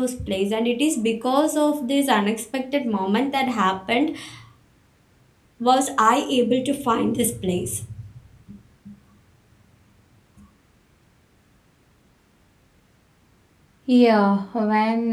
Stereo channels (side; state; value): both; identical; correlation 1.00